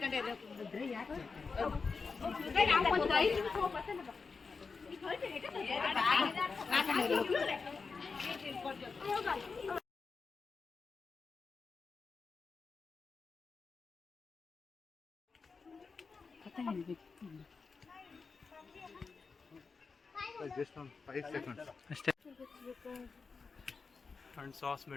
Just on 5 seconds. ಅಷ್ಟೇ. ಅಂಡ್ ಸಾಸ್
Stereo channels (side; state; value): right; quieter; 4.8 dB